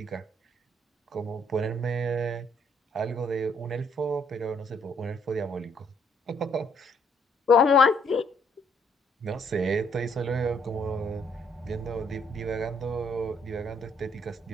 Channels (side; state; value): both; normal; correlation 0.68